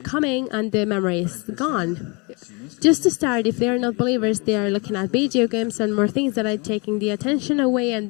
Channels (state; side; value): quieter; right; 30.3 dB